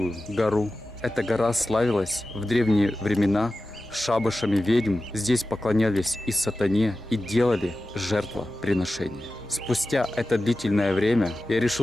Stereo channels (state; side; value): normal; both; correlation 0.94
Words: гору. Эта гора славилась в древние времена шабашами ведьм. Здесь поклонялись и сатане, и делали жертвоприношения. Спустя это длительное время я